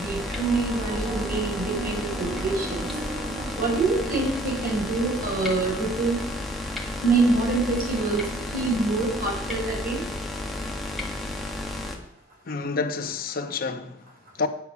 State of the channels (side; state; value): both; normal; correlation 0.54